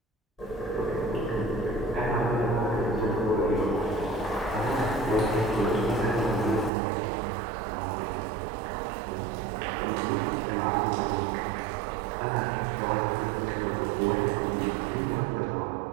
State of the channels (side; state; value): left; drops out; at 6.7 s